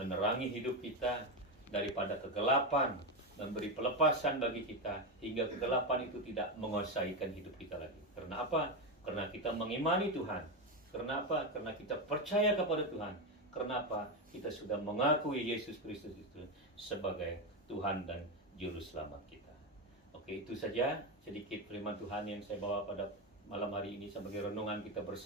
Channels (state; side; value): normal; both; correlation 0.11